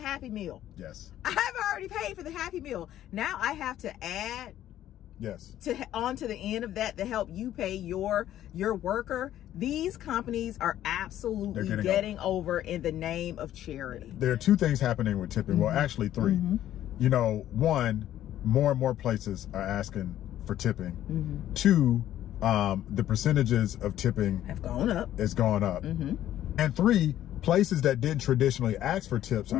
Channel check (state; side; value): quieter; right; 12.3 dB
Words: Meal. Yes. I've already paid for the Happy Meal. Now I have to add Yes. onto the end of that to help you pay your worker, these companies are absolutely getting over in the name of charity. There are two things happening with tipping. Well, actually three. You know, one, more and more places are asking for tipping. Two, the percentages of tipping have gone up. It's gone up. And three, places that didn't traditionally ask for tips